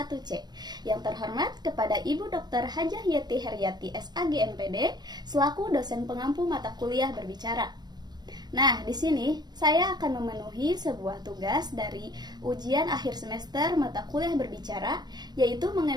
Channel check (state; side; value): late; left; 0.20 ms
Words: Yang terhormat kepada Ibu Dr. Hajah Yeti Heryati SAG MPD selaku dosen pengampu mata kuliah berbicara. Nah, di sini saya akan memenuhi sebuah tugas dari ujian akhir semester mata kuliah berbicara, yaitu